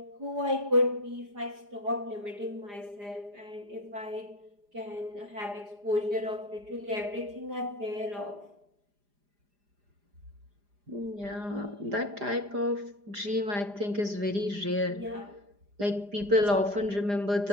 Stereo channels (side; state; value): left; late; 4.9 ms